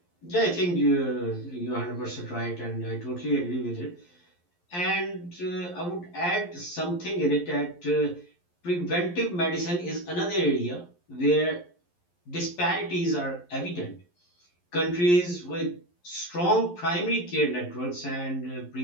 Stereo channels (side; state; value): right; late; 11 ms